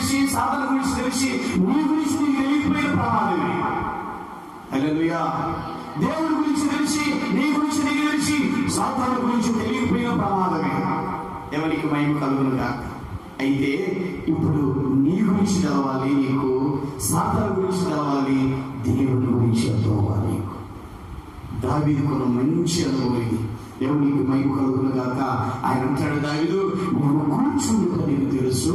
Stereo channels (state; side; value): identical; both; correlation 1.00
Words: సాతాను గురించి తెలిసి నీ గురించి నీకు తెలియకపోయిన ప్రమాదమే. హల్లెలూయా. దేవుడి గురించి తెలిసి నీ గురించి నీకు తెలిసి సాతాను గురించి తెలియకపోయిన ప్రమాదమే. ఎవరికి మహిమ కలుగును గాక. అయితే ఇప్పుడు నీ గురించి తెలవాలి నీకు, సాతాను గురించి తెలవాలి, దేవుని గురించి తెలవాలి నీకు. దావీదుకున్న మంచి అనుభవం ఇది. దేవునికి మహిమ కలుగును గాక. ఆయన అంటాడు, దావీదు నేను కూర్చుండుట నీకు తెలుసు,